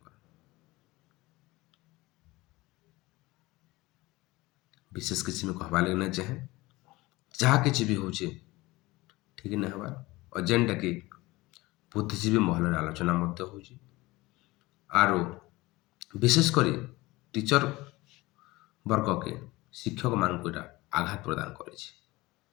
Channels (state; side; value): quieter; right; 20.7 dB